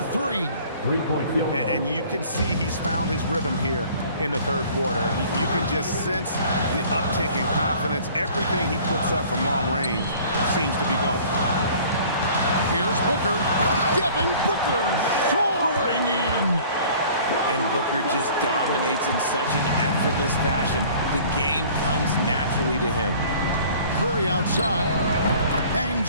3. Three-point field goal. And you can see he's found his rhythm here in the third quarter. You can just sense the uptick in confidence. Everything he puts up from long range seems to be going. Here's Booker. Devin Booker soaring in. And Booker just dominates in such an effortless fashion. The game comes naturally to him. Curry outside.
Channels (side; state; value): both; inverted; correlation -0.50